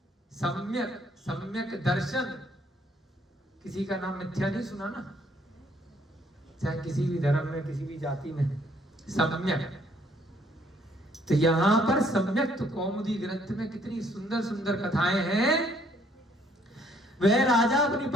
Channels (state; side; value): normal; both; correlation 0.65